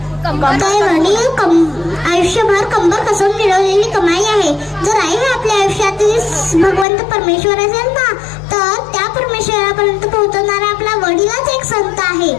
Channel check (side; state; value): right; drops out; at 6.9 s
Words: कसून मिळवलेली कमाई आहे. जर आई हे आपल्या आयुष्यातील भगवंत परमेश्वर असेल ना तर त्या परमेश्वरापर्यंत पोहोचवणारा आपला वडीलच एक संत आहे.